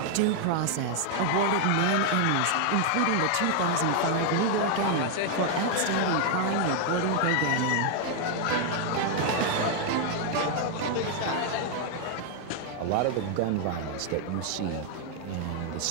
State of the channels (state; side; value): different; both; correlation 0.00